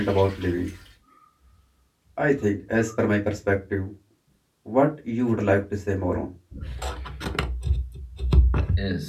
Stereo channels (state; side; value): identical; both; correlation 1.00